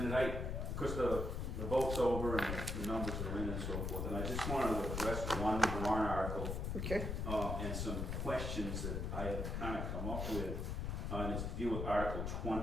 Of course, the vote's over and the numbers are in and so forth, and I just wanted to address one warrant article Okay. and some questions that I have kind of come up with, and it's to deal with Article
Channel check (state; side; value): noise; left; rumble, 2 dB below the sound